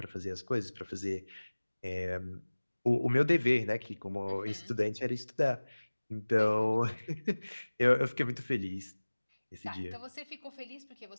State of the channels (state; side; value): inverted; both; correlation -1.00